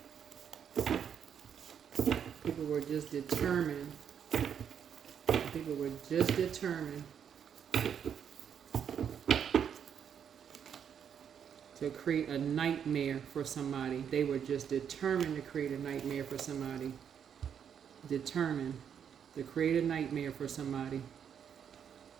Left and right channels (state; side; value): quieter; left; 8.1 dB